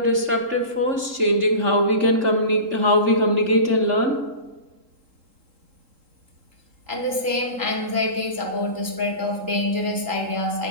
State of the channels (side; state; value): left; late; 3.7 ms